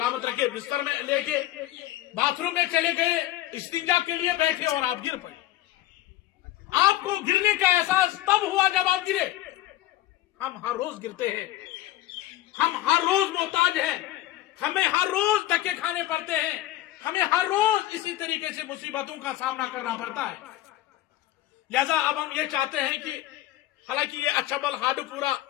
रखे, बिस्तर में लेके बाथरूम में चले गए, इस्तिंजा के लिए बैठे और आप गिर पड़े। आपको गिरने का एहसास तब हुआ जब आप गिरे। हम हर रोज गिरते हैं, हम हर रोज मोहताज हैं, हमें हर रोज धक्के खाने पड़ते हैं, हमें हर रोज इसी तरीके से मुसीबतों का सामना करना पड़ता है। लिहाजा अब हम ये चाहते हैं कि हालांकि ये अछबल हाडूपुरा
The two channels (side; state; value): right; quieter; 14.9 dB